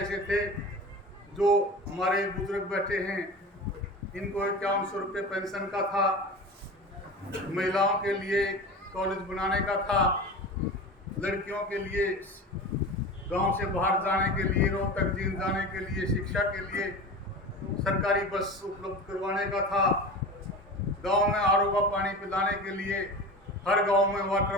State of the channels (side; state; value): both; normal; correlation 0.31